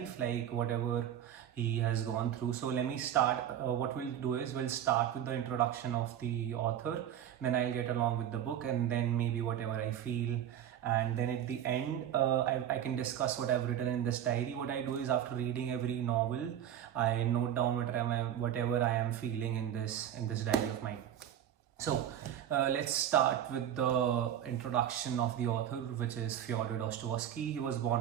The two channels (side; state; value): left; quieter; 10.3 dB